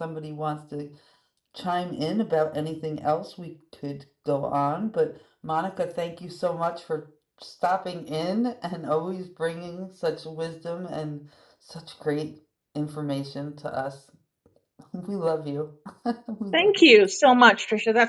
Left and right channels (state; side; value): identical; both; correlation 1.00